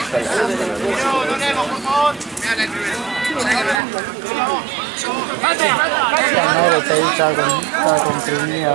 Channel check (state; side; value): drops out; left; at 3.8 s